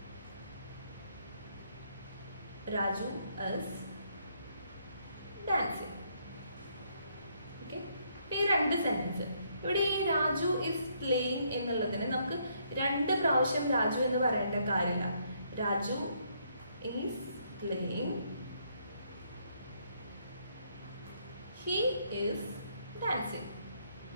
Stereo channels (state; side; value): inverted; both; correlation -0.71